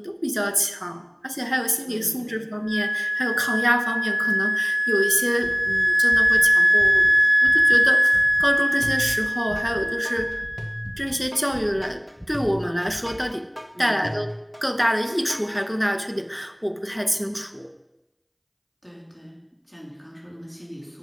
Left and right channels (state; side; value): identical; both; correlation 1.00